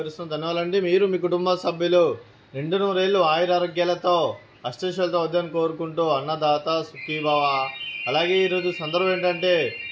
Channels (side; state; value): both; identical; correlation 1.00